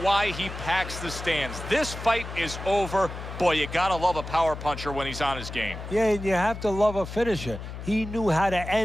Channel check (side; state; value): left; noise; hum, 9 dB below the sound